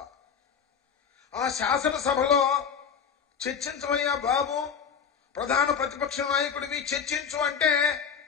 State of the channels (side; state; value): right; quieter; 6.9 dB